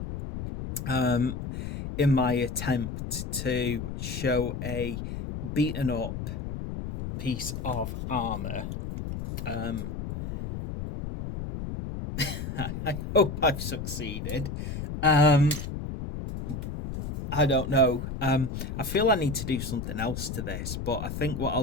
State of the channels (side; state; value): left; noise; rumble, 6 dB below the sound